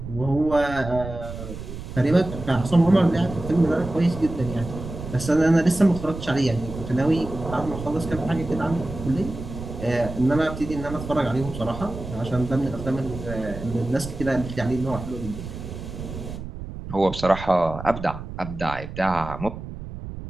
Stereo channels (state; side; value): noise; right; rumble, 10 dB below the sound